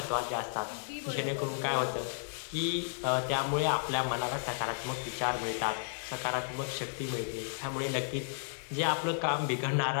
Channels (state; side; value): silent; right; digital silence